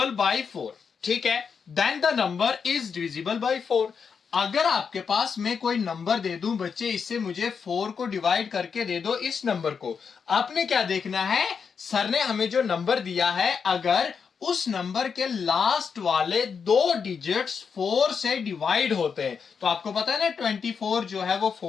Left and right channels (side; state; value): right; quieter; 6.2 dB